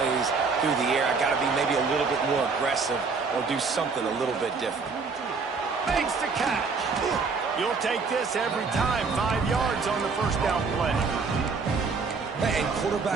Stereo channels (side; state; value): left; quieter; 4.8 dB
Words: through the air. I got to be maybe a little bit more aggressive or do something a little bit different. Makes the catch. You'll take this every time. 5 yards on the first down play. And